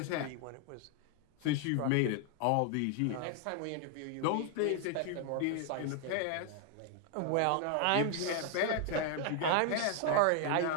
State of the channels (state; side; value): different; both; correlation 0.00